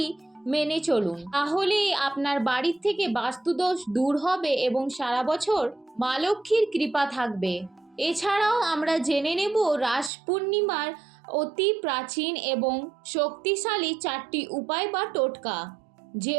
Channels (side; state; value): left; drops out; at 10.1 s